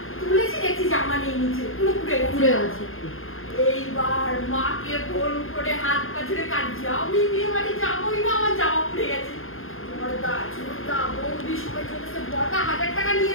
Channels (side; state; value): right; late; 0.60 ms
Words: তুলেছি, দেখছি জামা নেই নিচে, পুরো পুড়ে পুড়ে গেছে। গেছে। এইবার মাকে ফোন করে হাত পা ছেড়ে কাঁদছি, আমি বিয়ে বাড়ি যাবোই না, আমার জামা পুড়ে গেছে। বড়দা ছোটদা বৌদি সবাই চলেছে, বড়দা 1000 টাকা নিয়ে